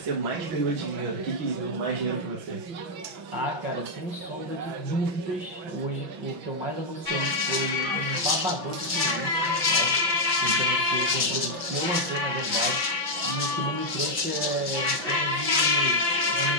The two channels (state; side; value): late; left; 5.8 ms